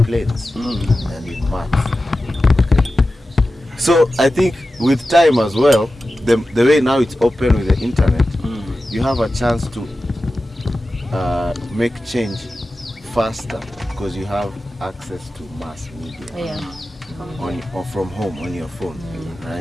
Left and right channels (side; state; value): both; normal; correlation 0.94